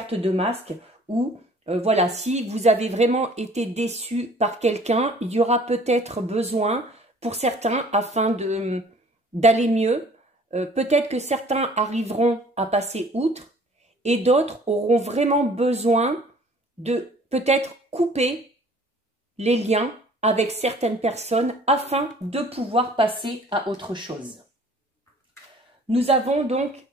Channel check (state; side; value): normal; both; correlation 0.53